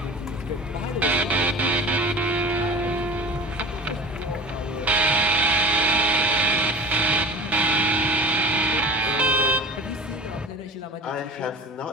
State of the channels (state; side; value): normal; both; correlation 0.36